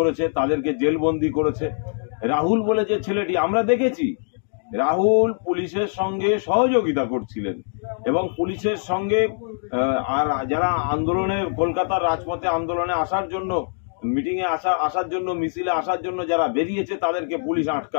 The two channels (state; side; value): silent; right; digital silence